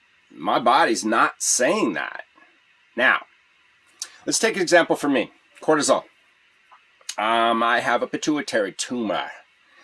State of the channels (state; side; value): identical; both; correlation 1.00